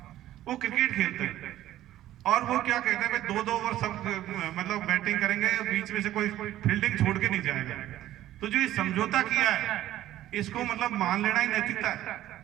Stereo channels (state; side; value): quieter; left; 13.6 dB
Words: वो क्रिकेट खेलते हैं और वो क्या कहते हैं, 2-2 ओवर सब मतलब बैटिंग करेंगे, बीच में से कोई फील्डिंग छोड़ के नहीं जाएगा। तो जो ये समझौता किया है इसको मतलब मान लेना ही नैतिकता है।